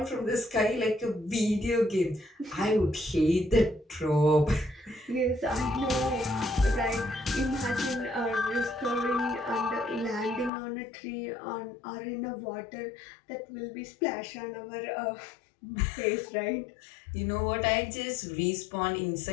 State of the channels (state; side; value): drops out; right; at 10.5 s